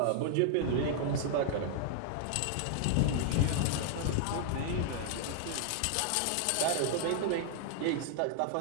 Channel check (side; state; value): both; different; correlation -0.01